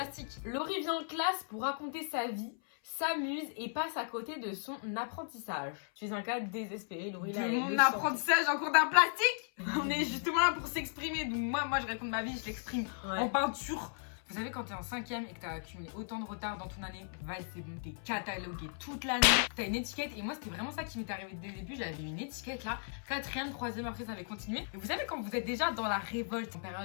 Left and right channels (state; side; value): silent; right; 54 dB below the other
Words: Laurie vient en classe pour raconter sa vie, s'amuse et passe à côté de son apprentissage. Tu es un cas désespéré, Laurie. De là, elle mon le sent. apprentissage en cours d'art plastique. On est justement là pour s'exprimer. Donc moi je raconte ma vie, je l'exprime Ouais. en peinture. Vous savez, quand t'es en 5ème et que t'as accumulé autant de retard dans ton année, c'est bon, t'es catalogué toute l'année. T'as une étiquette et moi c'était vraiment ça qui m'est arrivé dès le début. J'avais une étiquette là, 4ème, 3ème, après ça avait continué. Et vous savez, quand vous êtes déjà dans la révolte en